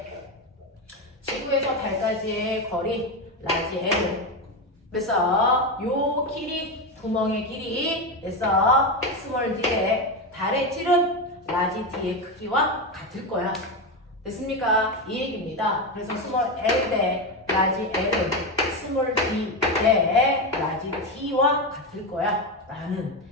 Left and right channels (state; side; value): normal; both; correlation 0.13